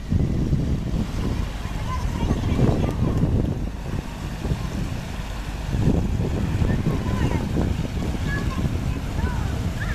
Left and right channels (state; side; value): identical; both; correlation 1.00